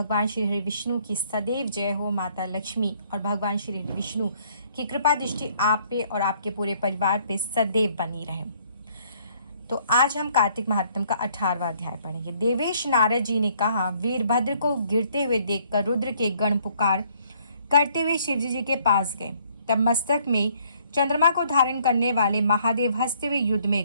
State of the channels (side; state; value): both; inverted; correlation -0.64